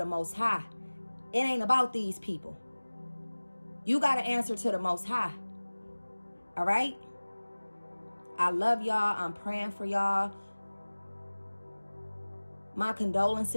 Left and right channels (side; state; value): both; inverted; correlation -1.00